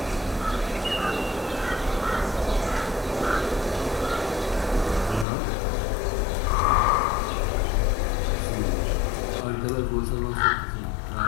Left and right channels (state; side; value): drops out; right; at 5.2 s